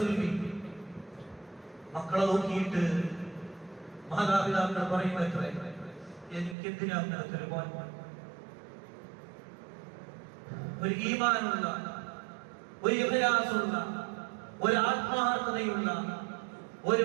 മക്കളെ നോക്കിയിട്ട് മാതാപിതാക്കൾ പറയുന്നത്രേ, എനിക്കെന്തിനാണ് ഒരു ഈമാനുള്ള, ഒരു ഇഖ്ലാസുള്ള, ഒരു ആത്മാർത്ഥതയുള്ള, ഒരു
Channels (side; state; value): left; drops out; at 6.6 s